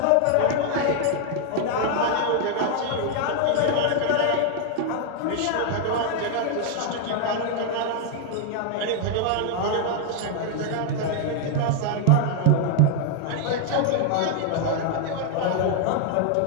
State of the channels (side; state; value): both; different; correlation 0.00